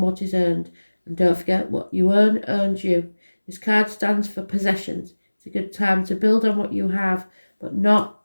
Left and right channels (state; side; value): inverted; both; correlation -1.00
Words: what is earned. And don't forget, what you earn earns you. This card stands for possessions. It's a good time to build on what you have, but not